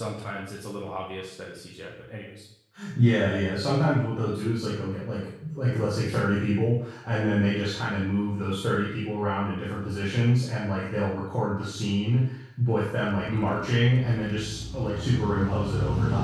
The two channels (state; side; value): identical; both; correlation 1.00